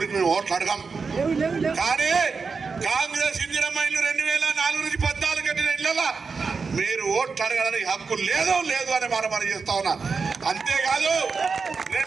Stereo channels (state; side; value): quieter; left; 5.0 dB